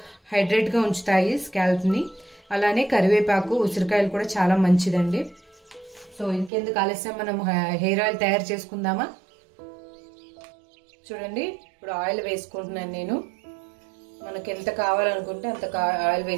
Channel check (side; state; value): left; drops out; at 6.5 s